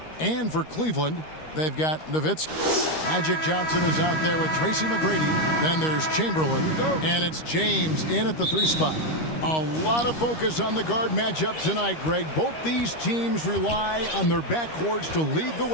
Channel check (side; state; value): right; late; 13 ms